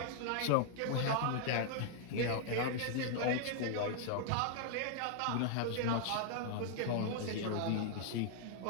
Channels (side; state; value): both; different; correlation 0.00